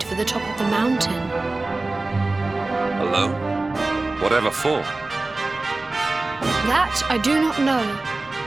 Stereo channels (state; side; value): quieter; left; 3.2 dB